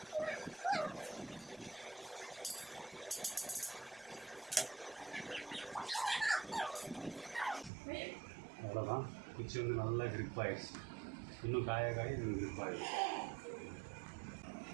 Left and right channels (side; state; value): left; drops out; at 7.7 s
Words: அவ்வளோதான். குச்சி வந்து நல்லா கிரிப் ஆகிடுச்சு. இன்னும் காய இது கிரிப் ஆகிடுச்சு.